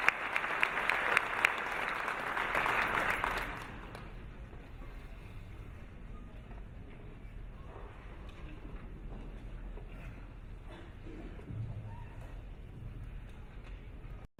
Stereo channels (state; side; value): identical; both; correlation 1.00